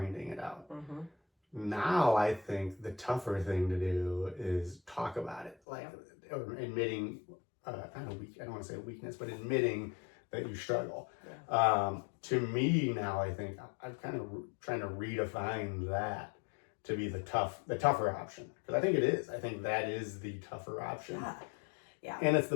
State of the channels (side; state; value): right; drops out; at 5.6 s